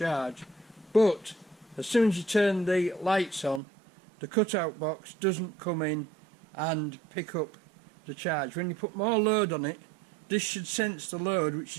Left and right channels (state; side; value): drops out; left; at 3.6 s